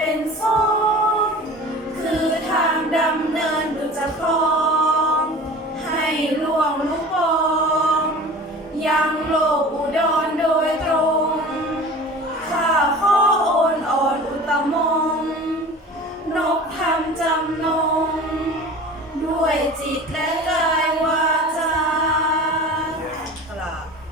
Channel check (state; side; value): normal; both; correlation 0.38